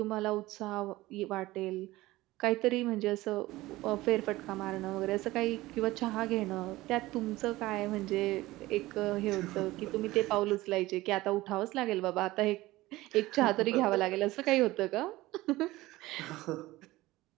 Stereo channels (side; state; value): left; quieter; 18.3 dB